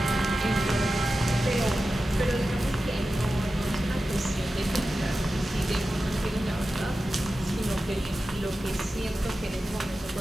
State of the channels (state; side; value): normal; both; correlation 0.93